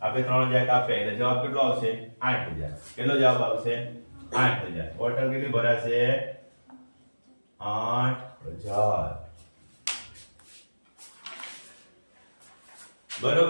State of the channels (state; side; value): inverted; both; correlation -1.00